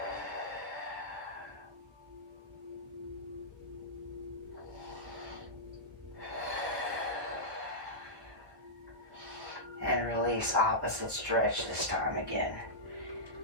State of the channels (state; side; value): late; left; 1.4 ms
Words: And release, opposite stretch this time again.